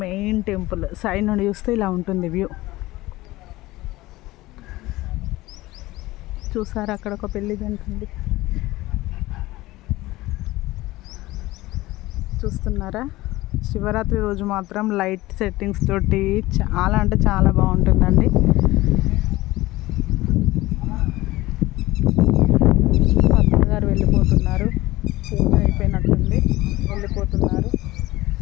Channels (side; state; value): right; quieter; 18.5 dB